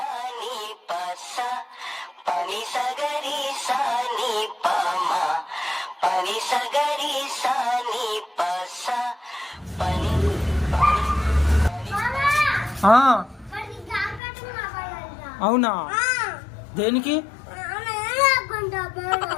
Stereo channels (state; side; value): drops out; right; at 14.2 s